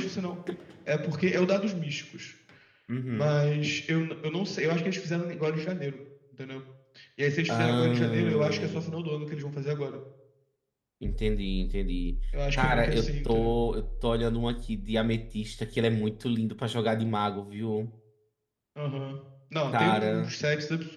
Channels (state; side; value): identical; both; correlation 1.00